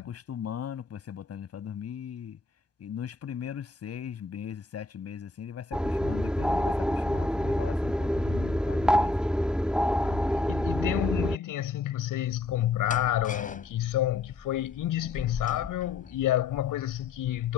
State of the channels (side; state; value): right; quieter; 3.7 dB